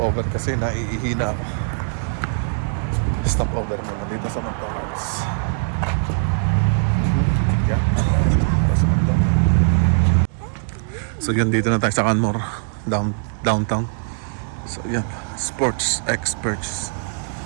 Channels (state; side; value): silent; left; digital silence